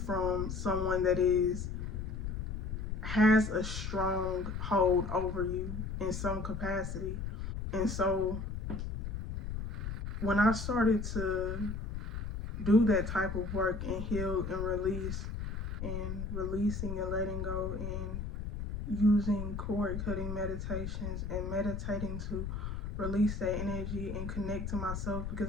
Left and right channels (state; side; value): noise; left; rumble, 5 dB below the sound